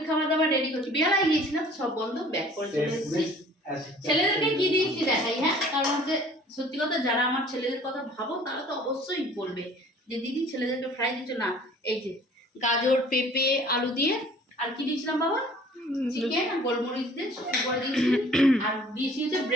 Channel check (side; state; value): both; normal; correlation 0.51